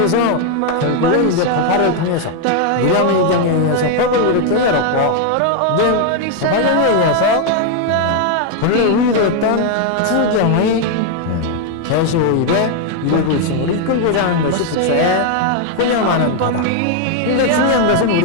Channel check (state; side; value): different; both; correlation 0.00